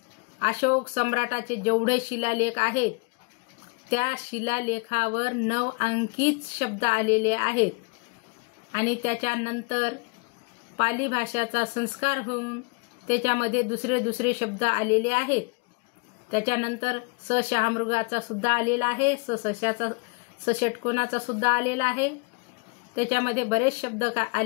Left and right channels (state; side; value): quieter; right; 33.1 dB